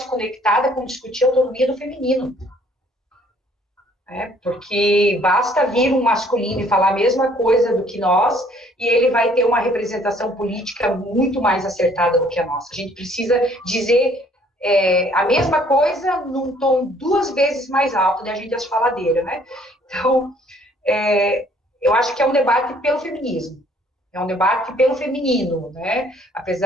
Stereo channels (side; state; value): both; normal; correlation 0.60